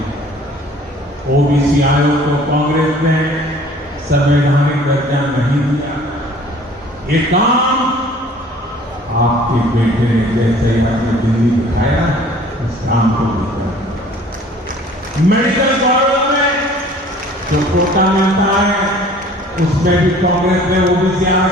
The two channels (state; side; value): normal; both; correlation 0.51